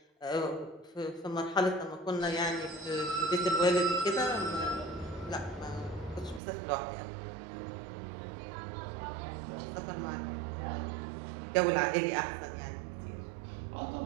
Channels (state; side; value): drops out; left; at 6.4 s